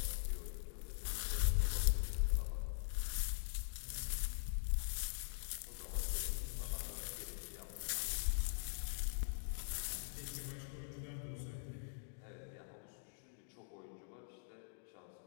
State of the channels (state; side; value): silent; right; digital silence